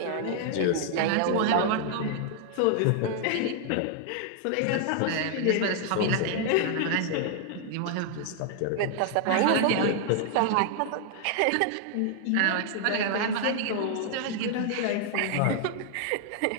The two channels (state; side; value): different; both; correlation 0.00